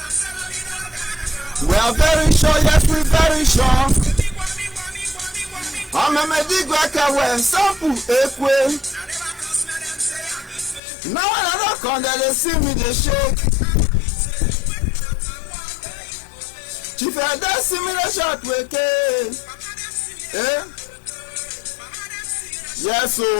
We are very sure, yes, we very sure. I'm a medic away, sample ekwe. Now when I don't come there, they see me, they shake. Chief, they see me, they shout, wake. Yes, so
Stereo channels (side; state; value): right; drops out; at 10.8 s